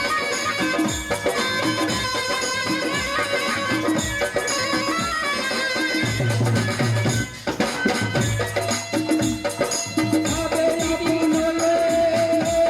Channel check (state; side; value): identical; both; correlation 1.00